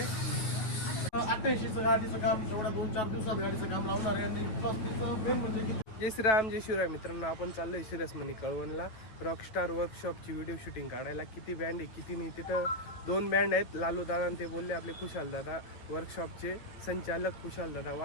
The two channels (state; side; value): late; right; 9.2 ms